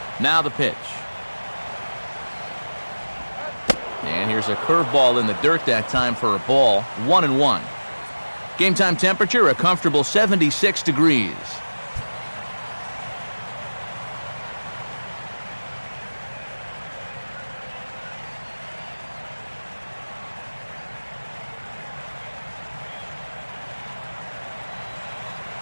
Now the pitch. And here's a curveball in the dirt that time for a ball. 1-1. Game time temperature, a comfortable 76 degrees.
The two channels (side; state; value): both; inverted; correlation -1.00